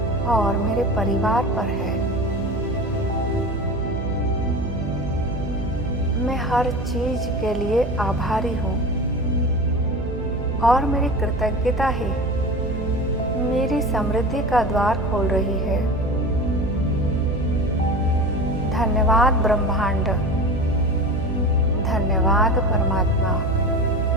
और मेरे परिवार पर है। मैं हर चीज के लिए आभारी हूँ और मेरी कृतज्ञता ही मेरी समृद्धि का द्वार खोल रही है। धन्यवाद ब्रह्मांड, धन्यवाद परमात्मा,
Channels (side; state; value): right; noise; hum, 7 dB below the sound